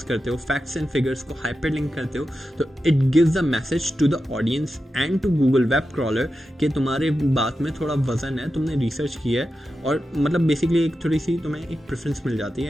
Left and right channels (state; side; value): normal; both; correlation 0.91